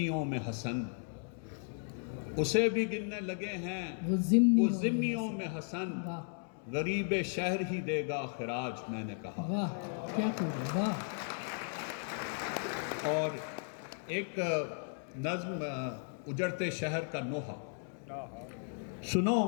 میں حسن، اسے بھی گننے لگے ہیں وہ ذمیوں میں حسن، غریب شہر ہی دے گا خراج، میں نے کہا۔ واہ کیا خوب ہے! واہ! اور ایک نظم، اجڑتے شہر کا نوحہ۔ سنو،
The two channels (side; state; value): right; silent; 54 dB below the other